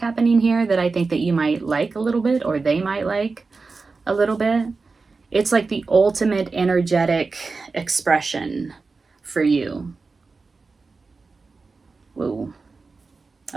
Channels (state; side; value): quieter; left; 4.2 dB